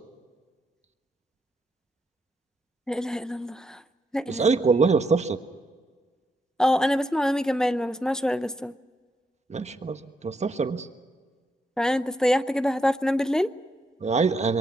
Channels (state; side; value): normal; both; correlation 0.79